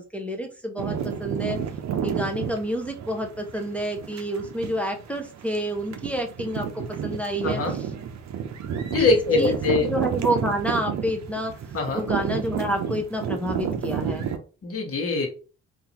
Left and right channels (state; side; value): normal; both; correlation 0.41